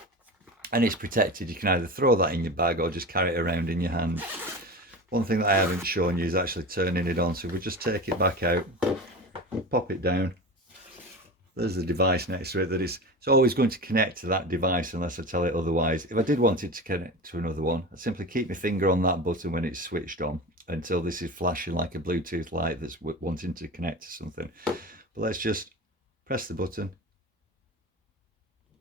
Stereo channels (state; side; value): normal; both; correlation 0.29